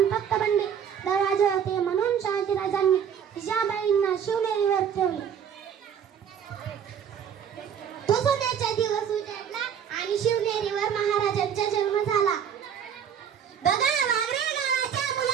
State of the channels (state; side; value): quieter; left; 8.2 dB